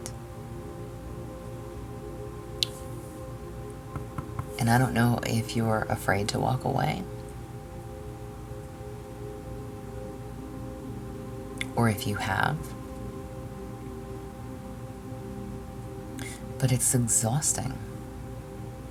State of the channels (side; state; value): both; identical; correlation 1.00